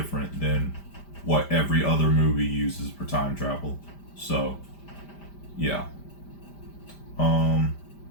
than what every other movie uses for time travel. So yeah. I'm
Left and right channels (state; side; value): late; right; 5.0 ms